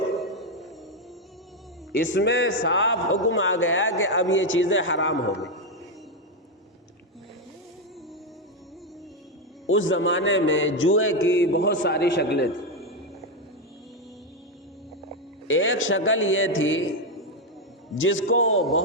اس میں صاف حکم آ گیا کہ اب یہ چیزیں حرام ہو گئی۔ اس زمانے میں جوئے کی بہت ساری شکلیں تھیں۔ ایک شکل یہ تھی جس کو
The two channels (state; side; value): normal; both; correlation 0.05